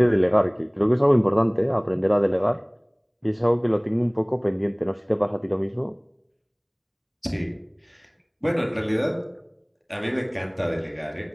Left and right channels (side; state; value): both; identical; correlation 1.00